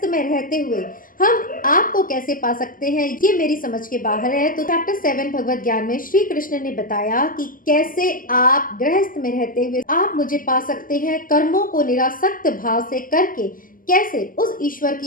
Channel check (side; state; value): right; late; 0.41 ms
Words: में रहते हुए हम आपको कैसे पा सकते हैं ये मेरी समझ के बाहर है। तो चैप्टर 7 भगवत ज्ञान में श्री कृष्ण ने बताया कि कैसे आप गृहस्थ में रहते हुए आप मुझे पा सकते हैं, कर्मों को निरासक्त भाव से करके कैसे उस ईश्वर